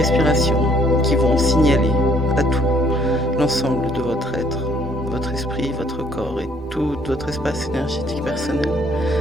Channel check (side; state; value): both; normal; correlation 0.64